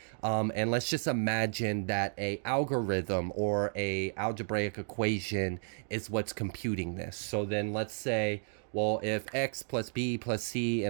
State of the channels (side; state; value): left; silent; digital silence